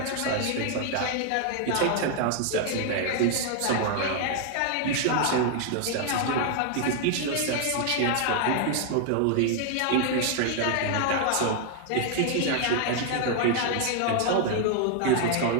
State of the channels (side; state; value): both; different; correlation 0.00